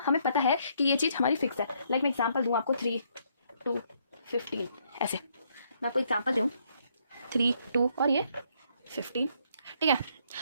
हमें पता है कि ये चीज़ हमारी फिक्स है। लाइक मैं एग्जांपल दूँ आपको 3, 2, 15 ऐसे। मैं आपको एग्जांपल दूँ 3, 2 और ये 15, ठीक है।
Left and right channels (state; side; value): inverted; both; correlation -0.70